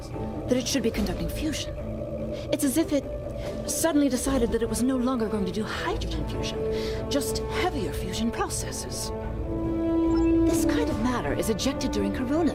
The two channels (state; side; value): identical; both; correlation 1.00